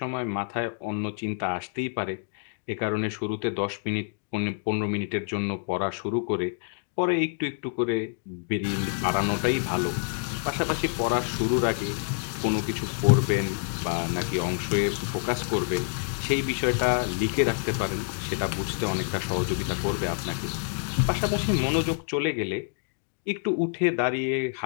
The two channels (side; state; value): right; silent; digital silence